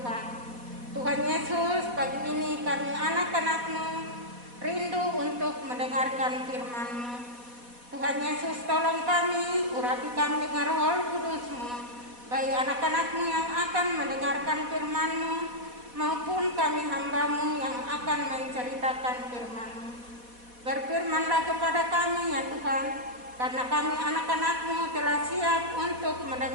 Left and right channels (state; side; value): late; left; 4.1 ms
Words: Tuhan Yesus, pagi ini kami anak-anak-Mu rindu untuk mendengarkan firman-Mu. Tuhan Yesus, tolong kami, urapi kami dengan Roh Kudus-Mu, baik anak-anak-Mu yang akan mendengarkan firman-Mu, maupun kami hamba-Mu yang akan menceritakan firman-Mu. Berfirmanlah kepada kami ya Tuhan, karena kami anak-anak-Mu telah siap untuk